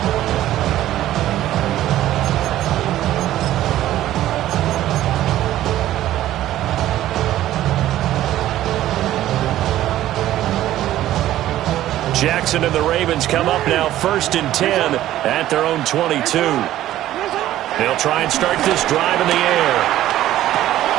Jackson and the Ravens come up now 1st and 10 at their own 22. They'll try and start this drive in the air.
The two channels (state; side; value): quieter; left; 13.6 dB